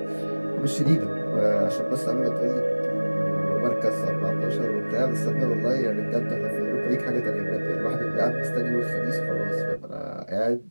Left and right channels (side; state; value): both; inverted; correlation -1.00